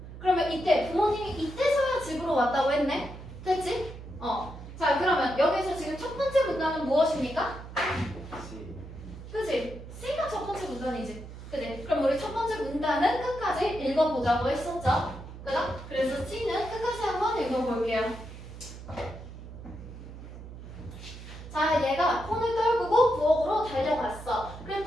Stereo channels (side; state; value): right; noise; hum, 13 dB below the sound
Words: 그러면 이때 부모님이 이때서야 집으로 왔다고 했네. 됐지? 자, 그러면 여기서 지금 첫 번째 문장은 무엇입니까? 그지? C가 첫 번째 문단이지. 그지? 그럼 우리 첫 번째 문단은 끝까지 읽어보자고 했었죠? 그죠? 그래서 C는 끝까지 한번 읽어볼게요. 자, 얘가 폰을 떨구고 부엌으로 달려갔어.